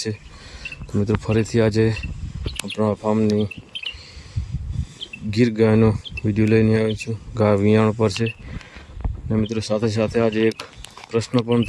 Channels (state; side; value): identical; both; correlation 1.00